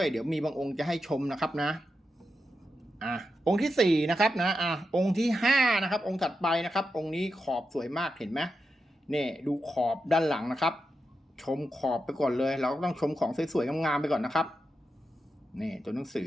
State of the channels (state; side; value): normal; both; correlation 0.88